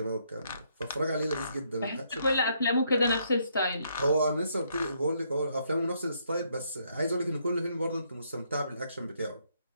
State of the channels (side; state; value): both; inverted; correlation -0.72